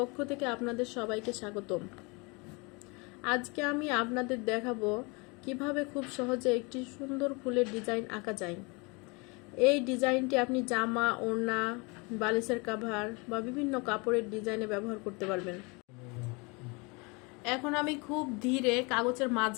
থেকে আপনাদের সবাইকে স্বাগতম। আজকে আমি আপনাদের দেখাবো কিভাবে খুব সহজে একটি সুন্দর ফুলের ডিজাইন আঁকা যায়। এই ডিজাইনটি আপনি জামা, ওড়না, বালিশের কভার বা বিভিন্ন কাপড়ের ডিজাইনে ব্যবহার করতে পারবেন। এখন আমি খুব ধীরে কাগজের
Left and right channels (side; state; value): right; quieter; 29.1 dB